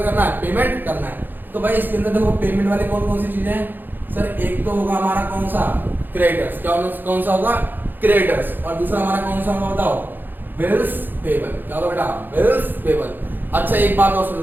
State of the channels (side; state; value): left; late; 0.090 ms